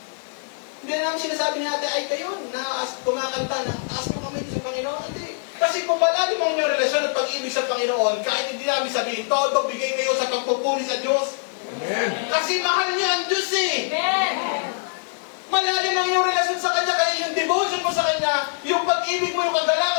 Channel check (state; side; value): silent; right; digital silence